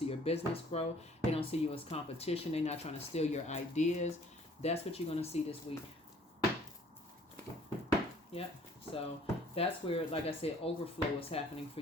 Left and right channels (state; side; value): normal; both; correlation 0.57